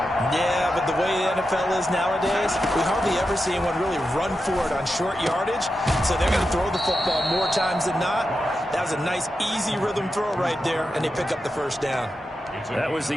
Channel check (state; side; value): normal; both; correlation 0.89